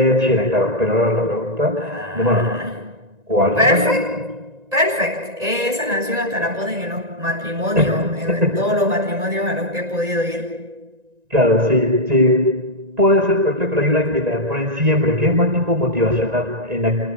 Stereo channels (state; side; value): late; left; 1.9 ms